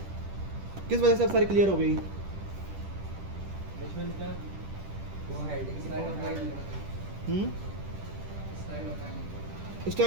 किस वजह से अब सारी क्लियर हो गई?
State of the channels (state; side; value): late; left; 10 ms